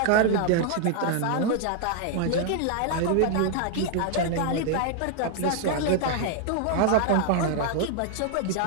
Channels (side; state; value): both; different; correlation 0.00